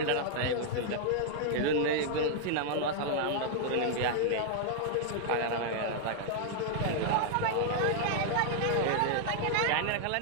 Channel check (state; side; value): different; both; correlation -0.01